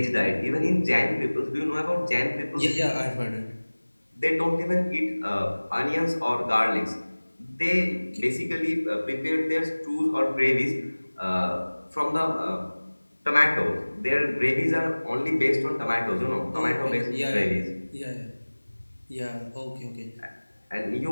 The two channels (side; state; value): both; inverted; correlation -1.00